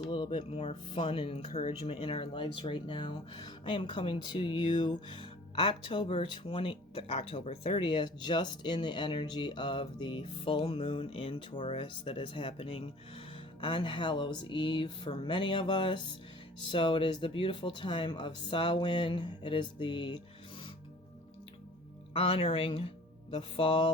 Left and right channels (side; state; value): both; normal; correlation 0.48